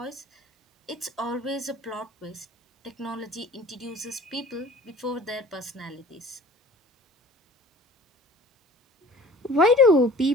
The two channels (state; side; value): normal; both; correlation 0.45